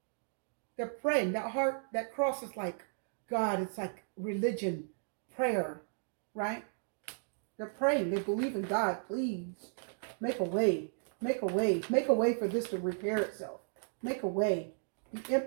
They're praying. That heart, that cross is like God. It's like religion, prayer, right? They're praying. They believe in God. Please make a way. Make a way. Make a way for this to repair itself. Make a way. The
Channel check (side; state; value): left; silent; digital silence